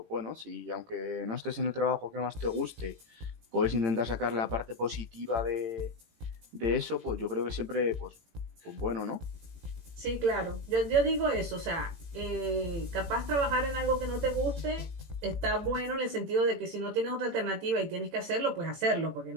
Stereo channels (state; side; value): late; left; 18 ms